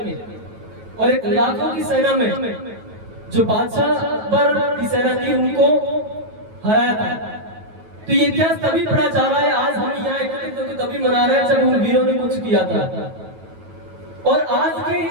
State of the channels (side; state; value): left; late; 9.2 ms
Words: और एक लाखों की सेना में जो बादशाह अकबर की सेना थी उनको हराया था। तो ये इतिहास तभी पढ़ा जा रहा है, आज हम यहाँ एकत्रित होकर तभी मना रहे हैं जब उन वीरों ने कुछ किया था। और आज के